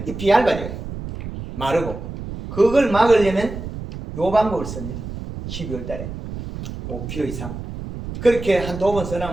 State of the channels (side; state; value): right; noise; rumble, 9 dB below the sound